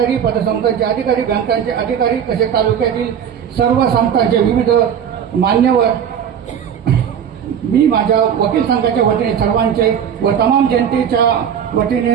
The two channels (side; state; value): left; quieter; 8.4 dB